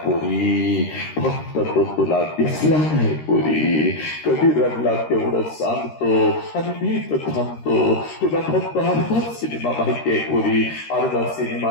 पोरी. फक्त तो तुला दिसला नाही पोरी. कधी रडला तेवढं सांगतो आणि मी तर थांबतो. तुला फक्त अर्धा सिनेमा माहितीये पोरी, अर्धा सिनेमा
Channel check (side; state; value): right; late; 13 ms